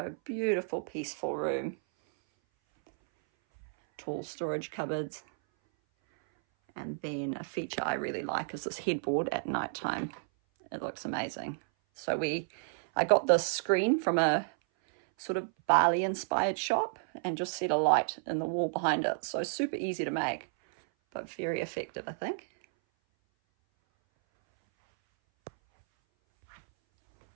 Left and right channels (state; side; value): silent; left; 57 dB below the other